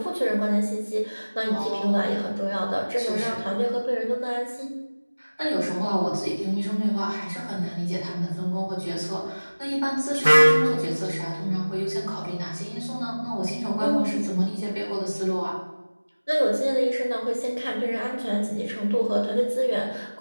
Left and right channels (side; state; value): both; inverted; correlation -1.00